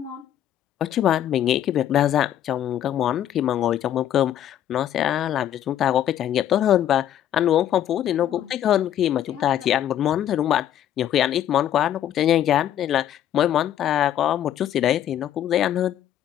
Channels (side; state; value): right; quieter; 11.1 dB